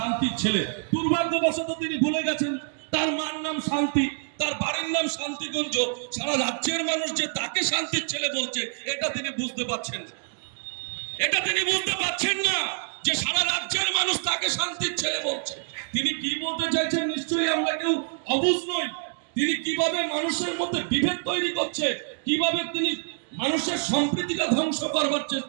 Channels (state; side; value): silent; left; digital silence